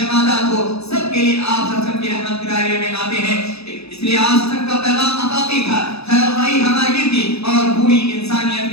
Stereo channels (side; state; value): right; late; 0.79 ms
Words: ہو، سب کے لیے آپ صلی اللہ علیہ وسلم کی رحمت کے دائرے میں آتے ہیں۔ اس لیے آپ صلی اللہ علیہ وسلم کا پیغام عطائی تھا، خیر خواہی ہماری تھی، اور پوری انسانیت